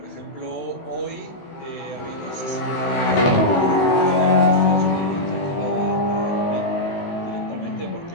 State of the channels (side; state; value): right; late; 16 ms